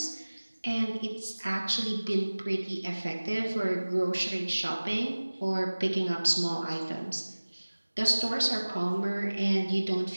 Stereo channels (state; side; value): inverted; both; correlation -1.00